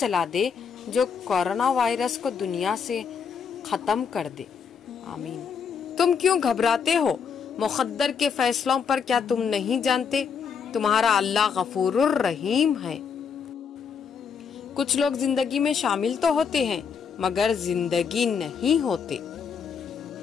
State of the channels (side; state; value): right; quieter; 6.4 dB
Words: دے جو کورونا وائرس کو دنیا سے ختم کر دے، آمین۔ تم کیوں گھبراتے ہو مقدر کے فیصلوں پر؟ کیا تم نہیں جانتے تمہارا اللہ غفور الرحیم ہے؟ کچھ لوگ زندگی میں شامل تو ہوتے ہیں مگر زندگی نہیں ہوتے۔